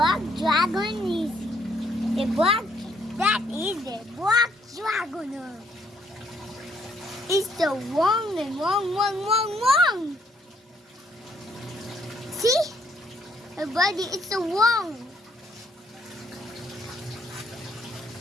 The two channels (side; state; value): both; normal; correlation 0.70